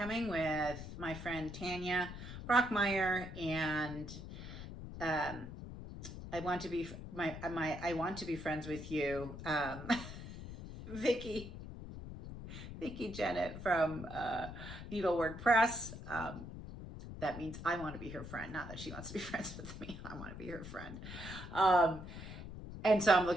with my friend Tanya Brockmeyer, and I want to be I want to be friends with you, Vicki Jennett from Needlework Press. That means I want to be her friend, not that she wants to be friends with me. I want to be her friend. And so I'm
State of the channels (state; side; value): noise; left; rumble, 10 dB below the sound